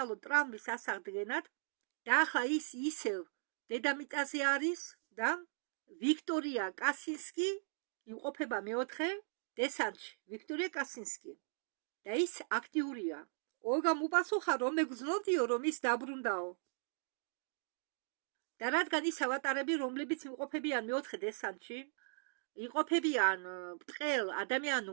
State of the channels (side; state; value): left; silent; digital silence